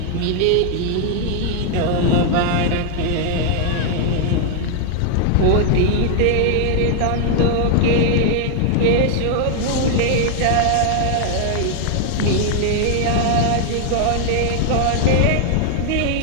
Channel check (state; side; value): different; both; correlation 0.00